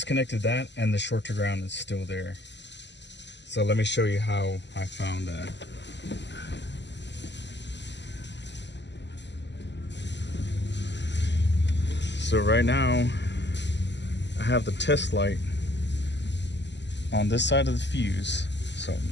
that, and the short to ground is still there. So let me show you how I found that. So right now, I have the test light on this side of the fuse. So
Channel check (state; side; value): late; right; 0.51 ms